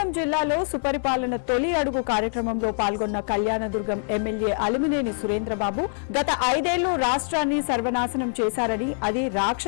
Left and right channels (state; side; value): silent; right; 62 dB below the other